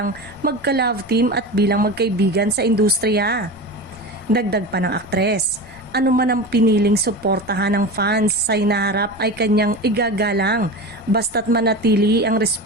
magka-love team at bilang magkaibigan sa industriya. Dagdag pa ng aktres, anuman ang piniling suportahan ng fans sa hinaharap ay kanyang igagalang basta't manatili ang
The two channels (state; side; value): noise; left; rumble, 24 dB below the sound